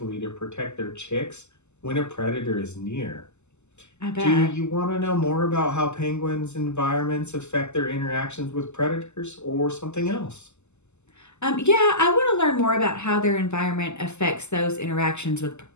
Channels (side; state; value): right; late; 0.83 ms